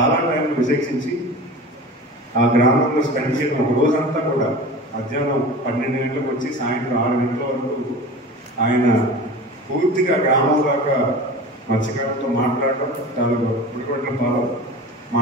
టైంలో విశేషించి ఆ గ్రామంలో స్పెండ్ చేయడం, ఒక రోజంతా కూడా మధ్యాహ్నం 12 గంటలకు వచ్చి సాయంత్రం 6 గంటల వరకు ఆయన పూర్తిగా గ్రామం దాకా మత్స్యకారులతో మాట్లాడడం, తాలూకా పుడిగొడ్లతో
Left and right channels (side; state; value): both; normal; correlation 0.35